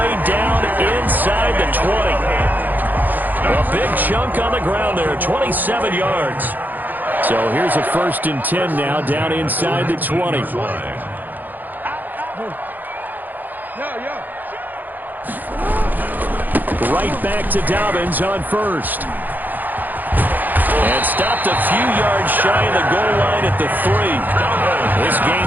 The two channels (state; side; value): late; left; 0.085 ms